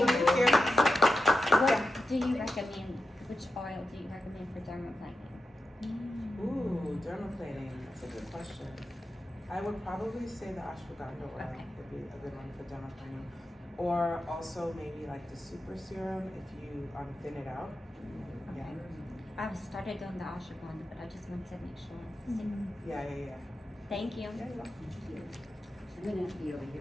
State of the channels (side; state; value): both; normal; correlation 0.90